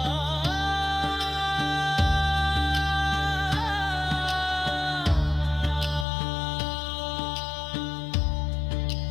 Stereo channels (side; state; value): right; drops out; at 6.1 s